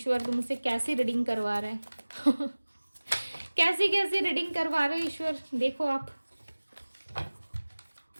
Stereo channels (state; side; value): inverted; both; correlation -1.00